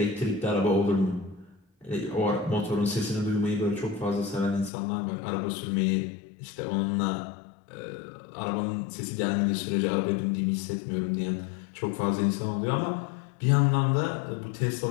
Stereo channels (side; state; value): right; drops out; at 4.7 s